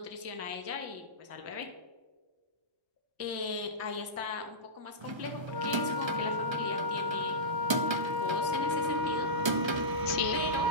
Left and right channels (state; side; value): late; left; 1.3 ms